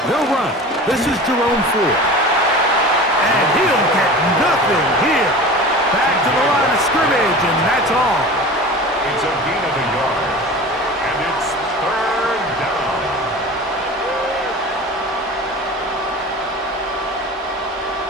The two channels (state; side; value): normal; both; correlation 0.36